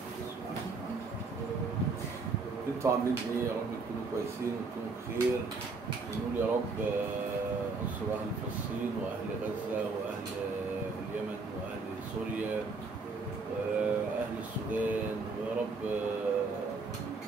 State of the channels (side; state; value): left; quieter; 4.1 dB